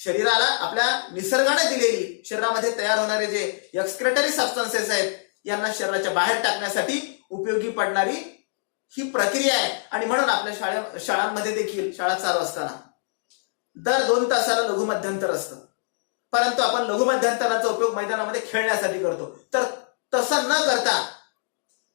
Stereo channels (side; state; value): right; silent; digital silence